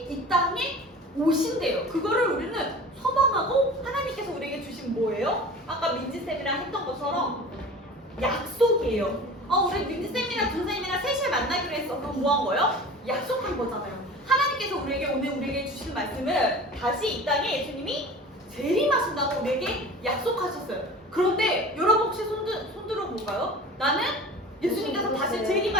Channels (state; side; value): normal; both; correlation 0.38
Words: 이 땅에 오신대요. 그거를 우리는 소망하고 하나님께서 우리에게 주신 뭐예요? 아까 민지쌤이랑 했던 것처럼 약속이에요. 우리 민지쌤이랑 준쌤이랑 3시에 만나기로 했어. 그럼 뭐 한 거예요? 약속한 거잖아요. 하나님께서 우리에게 주신 말씀을 다시 이 땅에 예수님이 재림하신다고 우리에게 약속하셨어요. 그런데 여러분 혹시 손 들어볼까요? 나는 예수님께서 다시